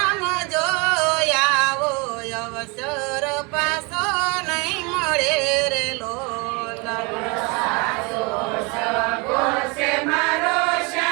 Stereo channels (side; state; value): left; quieter; 29.6 dB